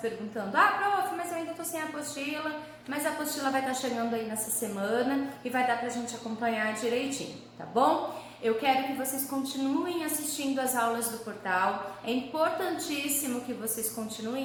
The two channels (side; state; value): both; identical; correlation 1.00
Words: prof, mas eu ainda estou sem a apostila, mas a apostila vai estar chegando aí nessa semana e vai dar pra gente acompanhar direitinho, tá bom? Eu quero que vocês continuem assistindo as aulas do portal, é importantíssimo que vocês